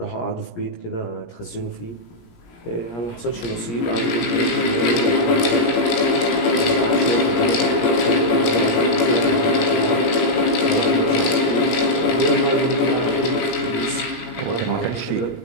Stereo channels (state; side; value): late; right; 17 ms